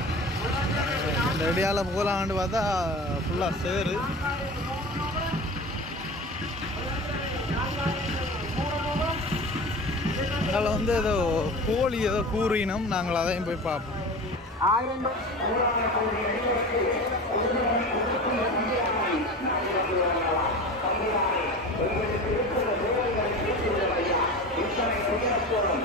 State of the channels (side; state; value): both; normal; correlation 0.33